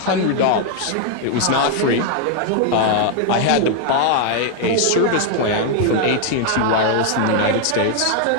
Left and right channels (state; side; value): different; both; correlation 0.00